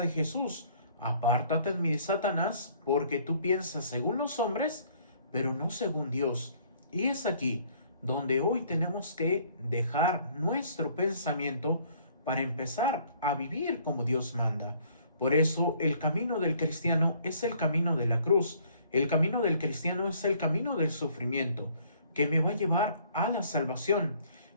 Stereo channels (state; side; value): inverted; both; correlation -0.60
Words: de Jesús? Apártate de mí, Satanás, porque tú piensas según los hombres, pero no según Dios. Y es aquí donde hoy tenemos que dejar nuestro pensamiento para empezar a vivir como Dios manda. Por eso el camino del cristiano es el camino de la cruz. El camino del cristiano es el camino del sufrimiento, que me va a llevar a la salvación.